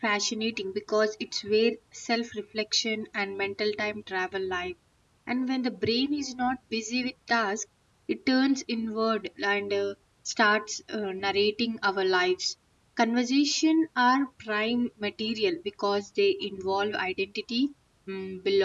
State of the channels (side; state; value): both; identical; correlation 1.00